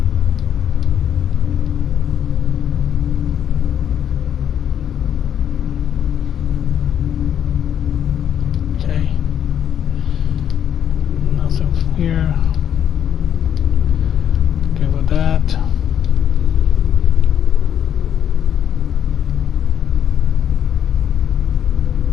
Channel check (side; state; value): right; quieter; 9.3 dB